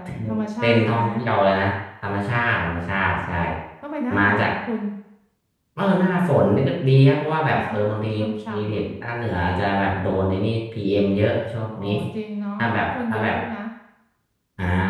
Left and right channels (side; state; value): both; identical; correlation 1.00